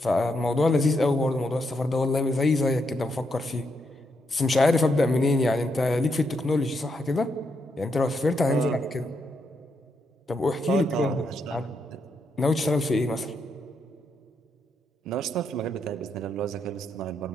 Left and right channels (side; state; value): both; normal; correlation 0.80